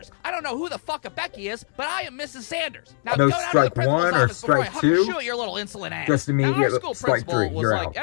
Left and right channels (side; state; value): right; silent; digital silence